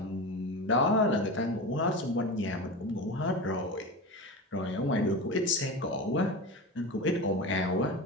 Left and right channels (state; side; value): normal; both; correlation 0.26